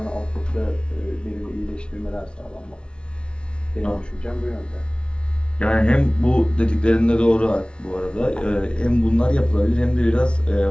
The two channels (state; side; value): late; right; 0.057 ms